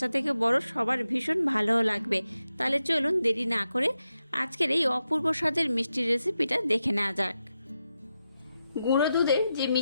থেকে বড় সবার ভীষণ ভালোও লাগবে। তাহলে চলুন দেরি না করে আজকের এই অপূর্ব স্বাদের মিষ্টির রেসিপিটা দেখে নেওয়া যাক। গুঁড়ো দুধের যে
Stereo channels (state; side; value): inverted; both; correlation -0.89